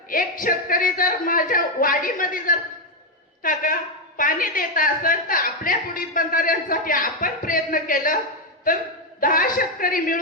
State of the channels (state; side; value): normal; both; correlation 0.04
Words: एक शेतकरी जर माझ्या वाडीमध्ये जर काका पाणी देत असेल तर आपल्या पुढील बंधाऱ्यांसाठी आपण प्रयत्न केलं तर 10 शेतकरी